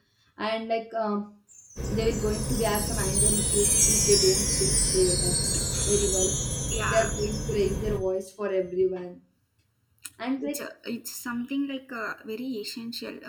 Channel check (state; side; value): identical; both; correlation 1.00